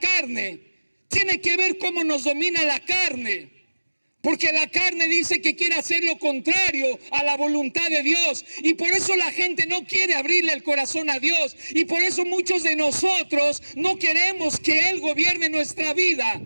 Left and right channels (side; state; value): both; inverted; correlation -1.00